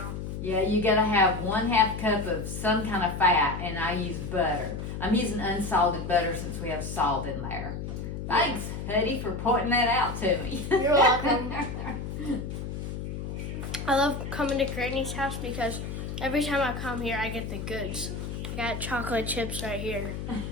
Yeah, you gotta have 1/2 cup of some kind of fat, and I use butter. I'm using unsalted butter since we have salt in there. Thanks, Huddy, for pointing that out to me. You're welcome. I love coming to Granny's house because every time I come here, I get the goods. I got chocolate chips right here.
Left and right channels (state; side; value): noise; left; hum, 6 dB below the sound